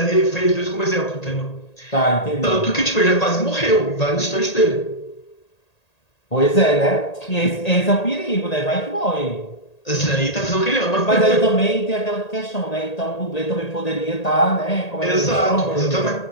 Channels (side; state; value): right; late; 1.8 ms